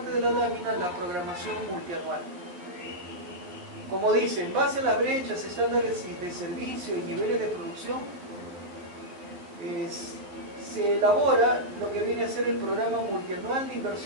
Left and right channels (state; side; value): late; left; 11 ms